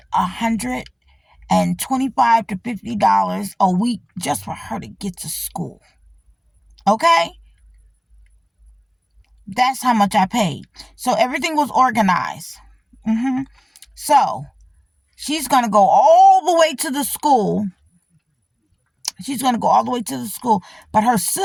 $125 to $50 a week just for her to get to school. Okay? That's how much I paid. So everything was organized. So she's going to go all the way to the school. But her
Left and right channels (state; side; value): identical; both; correlation 1.00